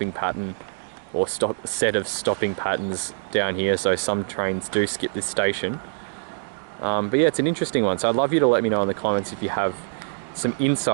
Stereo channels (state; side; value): silent; left; digital silence